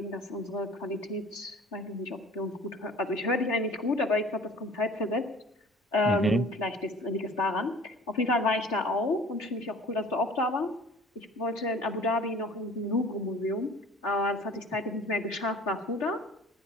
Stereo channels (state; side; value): normal; both; correlation 0.47